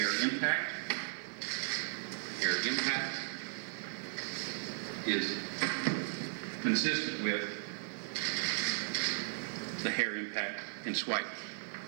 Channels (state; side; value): silent; left; 54 dB below the other